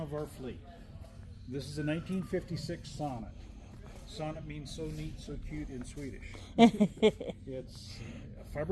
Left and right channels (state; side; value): identical; both; correlation 1.00